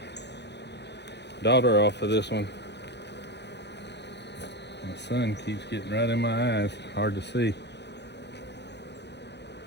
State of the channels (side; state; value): right; late; 0.50 ms